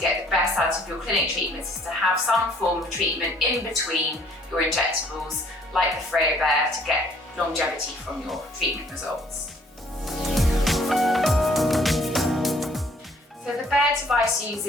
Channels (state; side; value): normal; both; correlation 0.60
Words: the best out of your clinic treatments is to have some form of treatment in between your injectables, like the FOREO Bear, to get longevity from your treatment results. So the Bear device